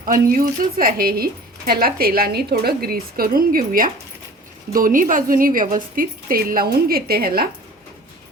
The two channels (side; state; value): both; normal; correlation 0.45